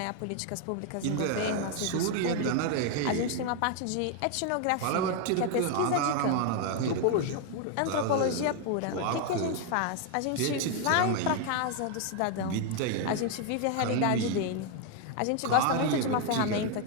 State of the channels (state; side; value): different; both; correlation 0.01